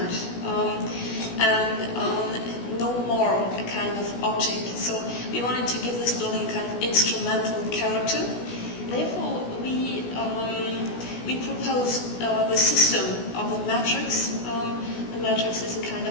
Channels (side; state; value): right; late; 16 ms